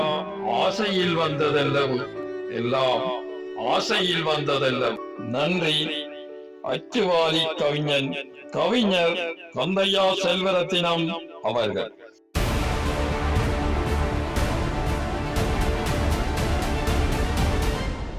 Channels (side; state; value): both; identical; correlation 1.00